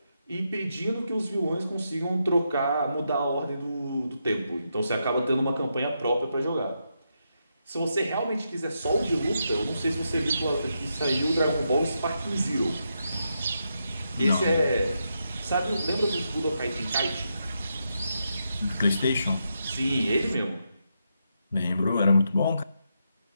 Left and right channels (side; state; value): both; inverted; correlation -0.83